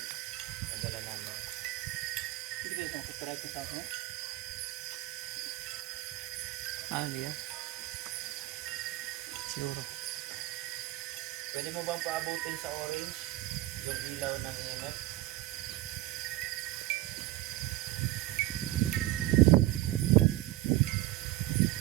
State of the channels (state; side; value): quieter; left; 16.6 dB